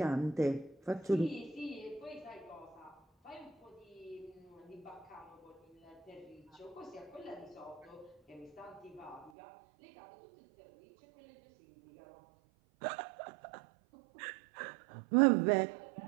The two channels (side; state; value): left; drops out; at 9.3 s